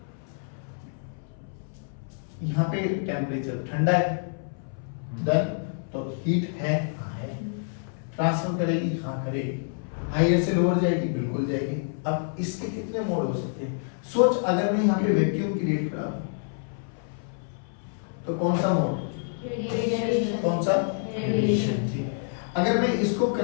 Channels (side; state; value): right; silent; 60 dB below the other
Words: यहाँ पे टेम्परेचर ठंडा है, देन तो हीट है, हाँ है, ट्रांसफर करेगी, हाँ करेगी, हायर से लोअर जाएगी, बिल्कुल जाएगी। अब इसके कितने मोड हो सकते हैं? सोच अगर मैं यहाँ पे वैक्यूम क्रिएट करा तो कौन सा मोड? कौन सा? रेडिएशन। ठीक। अगर मैं इसको